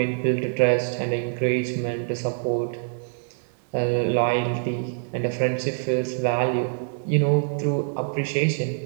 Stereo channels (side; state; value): left; silent; 56 dB below the other